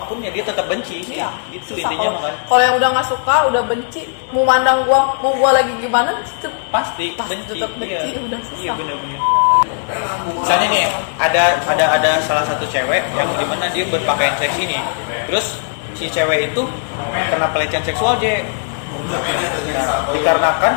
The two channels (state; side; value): silent; right; 63 dB below the other